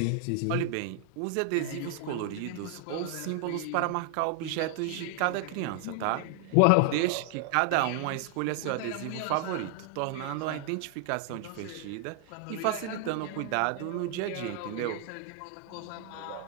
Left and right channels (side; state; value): both; different; correlation 0.00